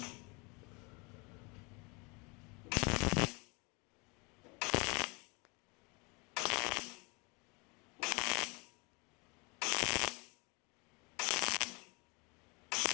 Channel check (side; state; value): right; quieter; 30.0 dB